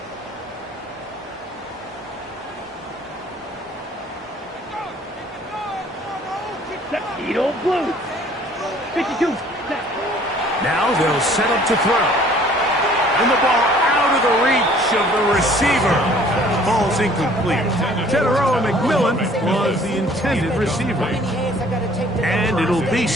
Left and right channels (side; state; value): both; normal; correlation 0.55